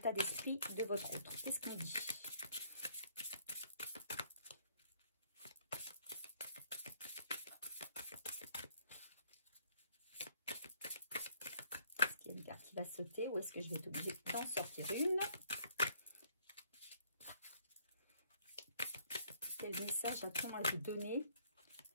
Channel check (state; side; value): inverted; both; correlation -0.64